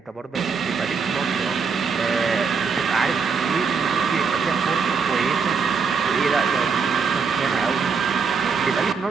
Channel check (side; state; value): left; quieter; 5.5 dB